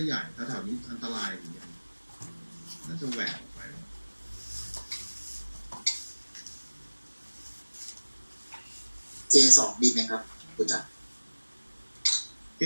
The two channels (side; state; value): both; inverted; correlation -1.00